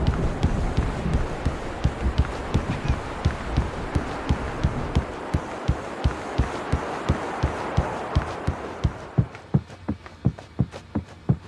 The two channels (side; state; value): both; identical; correlation 1.00